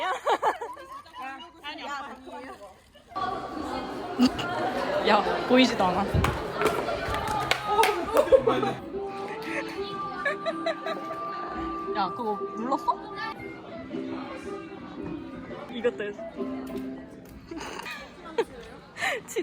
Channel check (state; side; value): identical; both; correlation 1.00